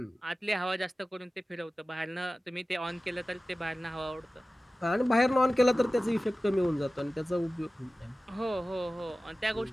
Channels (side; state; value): both; normal; correlation 0.96